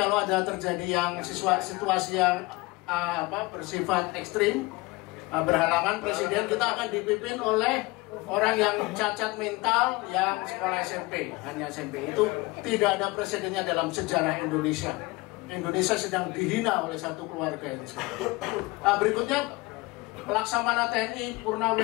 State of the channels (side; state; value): right; quieter; 23.3 dB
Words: ada terjadi yang situasi yang bersifat ekstrim, berhalangan presiden, kita akan dipimpin oleh orang yang cacat mental yang sekolah SMP, hanya SMP. Itu tidak ada presidennya dalam sejarah Indonesia. Indonesia sedang dihina oleh satu keluarga ini sekarang. Berikutnya Laksamana TNI